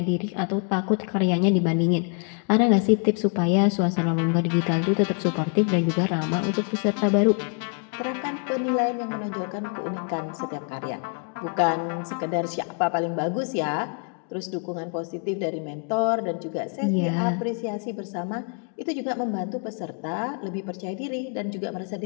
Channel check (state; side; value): quieter; right; 38.6 dB